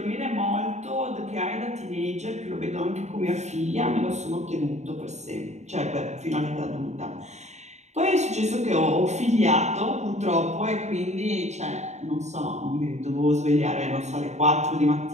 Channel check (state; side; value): late; left; 0.33 ms